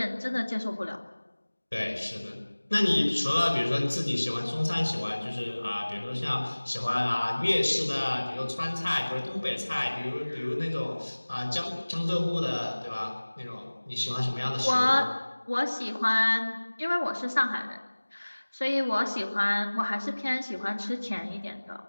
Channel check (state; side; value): inverted; both; correlation -1.00